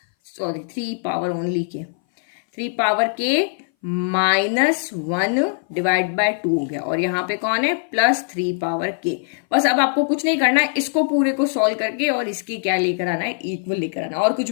3 पावर ओनली के 3 पावर के -1 डिवाइड बाय 2 हो गया, और यहाँ पे कौन है, +3 पावर के। बस अब आपको कुछ नहीं करना है, इसको पूरे को सॉल्व करके और इसकी क्या लेकर आना है, इक्वल लेकर आना, और कुछ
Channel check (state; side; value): silent; right; 60 dB below the other